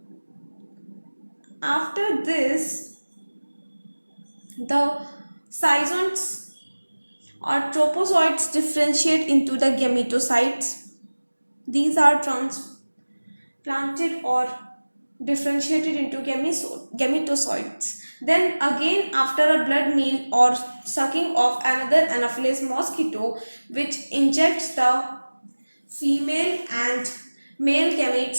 After this, the zygotes or tropozoites differentiate into the gametocytes. These are transplanted or differentiated into gametocytes. Then again, after a blood meal or sucking of another Anopheles mosquito, which injects the female and male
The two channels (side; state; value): both; inverted; correlation -1.00